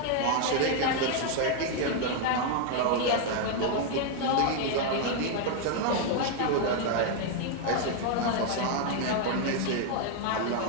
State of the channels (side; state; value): both; different; correlation 0.00